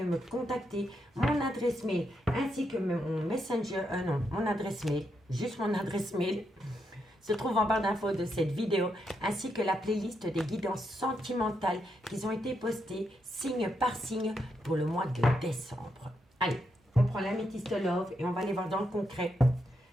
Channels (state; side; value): normal; both; correlation 0.81